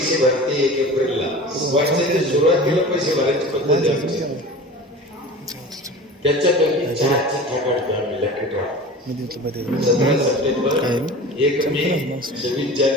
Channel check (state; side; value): normal; both; correlation 0.36